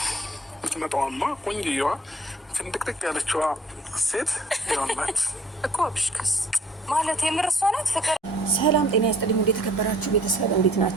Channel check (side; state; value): both; normal; correlation 0.57